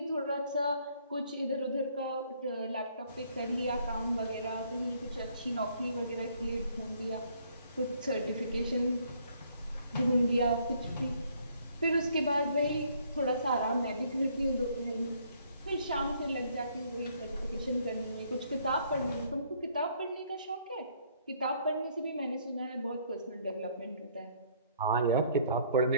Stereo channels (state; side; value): inverted; both; correlation -0.65